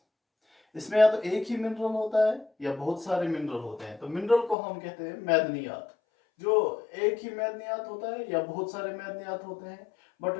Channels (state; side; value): drops out; right; at 4.5 s